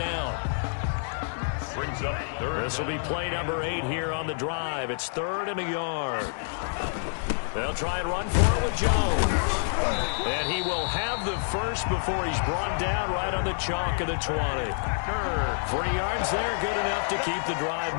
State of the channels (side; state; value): right; silent; digital silence